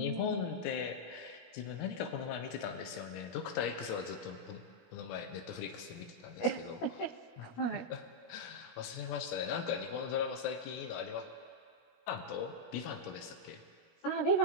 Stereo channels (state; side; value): late; right; 17 ms